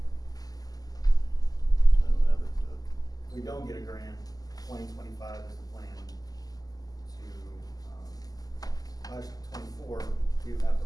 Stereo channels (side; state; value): right; late; 0.18 ms